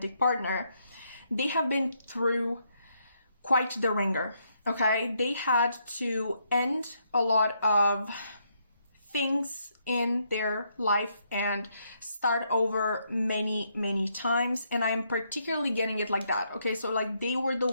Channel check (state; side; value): inverted; both; correlation -0.75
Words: partner, they have been through quite the ringer, okay? They had to end a lot of things in their life and start over many, many times, and I'm particularly getting it like that, okay? So like they were the